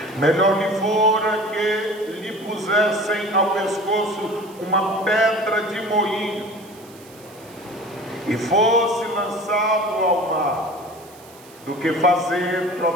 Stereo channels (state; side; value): noise; right; hiss, 23 dB below the sound